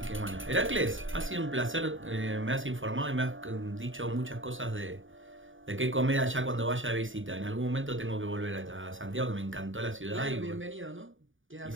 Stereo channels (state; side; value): late; left; 0.57 ms